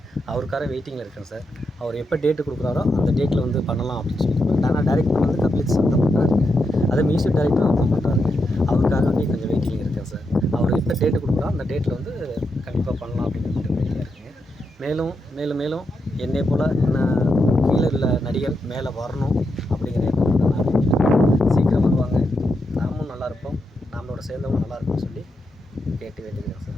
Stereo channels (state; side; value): normal; both; correlation 0.84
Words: அவருக்காக வெயிட்டிங்கில் இருக்கேன் சார். அவர் எப்போ டேட்டு கொடுக்குறாரோ அந்த டேட்டில் வந்து பண்ணலாம் அப்படின்னு சொல்லிட்டு. ஆனால் டேரக்டர் வந்து கபிலீஸ்வரன் தான் பண்ணுறாருங்க. அதே மியூசிக் டைரக்டரும் அவர் தான் பண்ணுறாருங்க. அவருக்காக வந்து கொஞ்சம் வெயிட்டிங்கில் இருக்கேன் சார். அவர் எப்போ டேட்டு கொடுக்குறோ அந்த டேட்டில் வந்து கண்டிப்பாக பண்ணலாம் அப்படின்னு கொஞ்சம் வெயிட்டிங்கில் இருக்குங்க. மேலும் என்னை போல் என்ன கீழே உள்ள நடிகர் மேலே வரணும்.